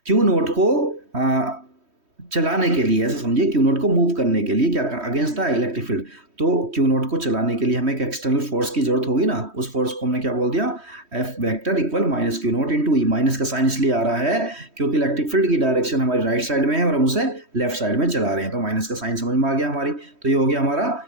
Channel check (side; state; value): left; late; 3.1 ms